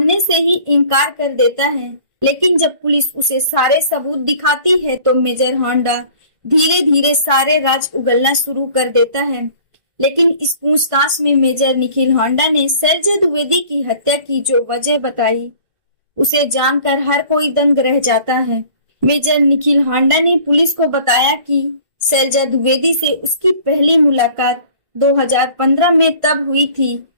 से ही इनकार कर देता है, लेकिन जब पुलिस उसे सारे सबूत दिखाती है तो मेजर होंडा धीरे धीरे सारे राज उगलना शुरू कर देता है। लेकिन इस पूछताछ में मेजर निखिल होंडा ने शैलजा द्विवेदी की हत्या की जो वजह बताई उसे जानकर हर कोई दंग रह जाता है। मेजर निखिल होंडा ने पुलिस को बताया कि शैलजा द्विवेदी से उसकी पहली मुलाकात 2015 में तब हुई थी।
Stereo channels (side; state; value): left; late; 1.5 ms